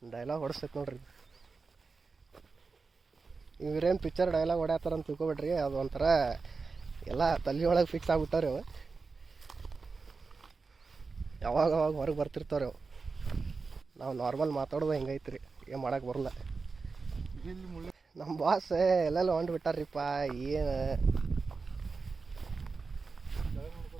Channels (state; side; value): quieter; left; 4.4 dB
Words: ಡೈಲಾಗ್ ಹೊಡಿಸ್ತೈತೆ ನೋಡ್ರಿ. ಇವ್ರೇನು ಪಿಕ್ಚರ್ ಡೈಲಾಗ್ ಹೊಡ್ಯಾತಾರ ಅಂತ ತಿಳ್ಕೊಬೇಡ್ರಿ, ಅದು ಒಂಥರ ಎಲ್ಲ ತಲೆ ಒಳಗೆ ಫಿಕ್ಸ್ ಆಗ್ಬಿಟ್ಟಾರೆ ಅವು. ಯಾವಾಗ ಅವಾಗ ಹೊರಗೆ ಬರ್ತಿರ್ತಾವೆ ಅವು. ನಾವು ನಾರ್ಮಲ್ ಮಾತಾಡೋದು ಹೆಂಗೈತ್ರಿ, ಏನು ಮಾಡೋಕೆ ಬರಲ್ಲ. ನಮ್ಮ ಬಾಸ್ ಎಲ್ಲೆಲ್ಲ ಹೊಂಟು ಬಿಟ್ಟಾರ್ರಿಪ್ಪ. ಏನು